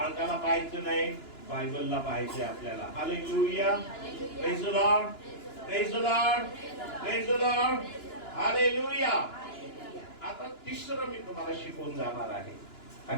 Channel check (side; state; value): right; late; 2.9 ms